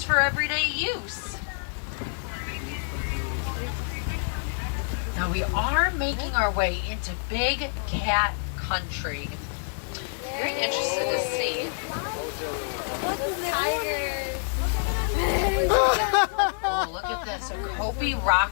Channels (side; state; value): right; silent; digital silence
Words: for everyday use. Now we are making our way into big cat country. Very interested to see. Oh, look at this, a Kobe